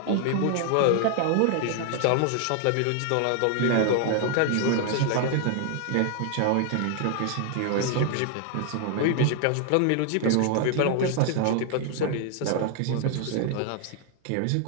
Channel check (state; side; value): different; both; correlation 0.00